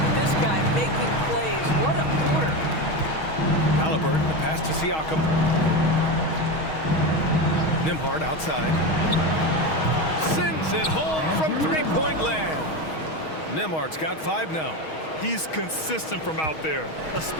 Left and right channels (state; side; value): late; right; 6.3 ms